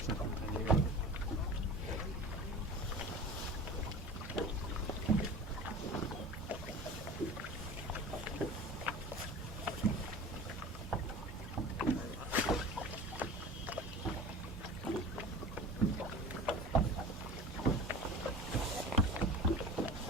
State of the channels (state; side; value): normal; both; correlation 0.37